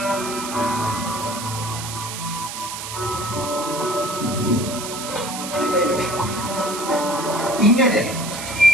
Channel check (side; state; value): right; noise; hiss, 7 dB below the sound